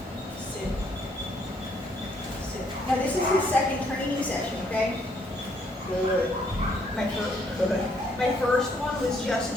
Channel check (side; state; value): both; normal; correlation 0.69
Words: Sit. Now this is his second training session, okay? Good. My first one was just